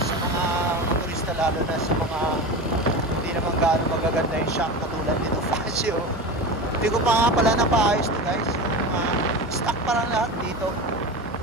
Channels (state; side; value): normal; both; correlation 0.27